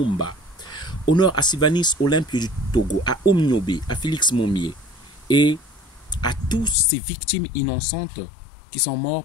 Honneur à Sylvanus Olympio du Togo, à Omniobe, à Félix Momier et à tous ces victimes innocentes qui sont morts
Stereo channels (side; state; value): right; drops out; at 6.8 s